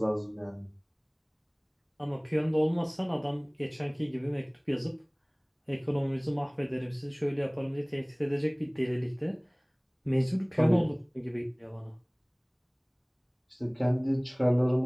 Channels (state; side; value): identical; both; correlation 1.00